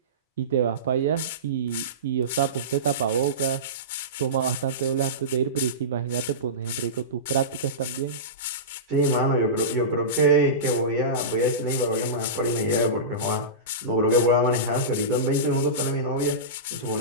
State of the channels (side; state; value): both; normal; correlation -0.20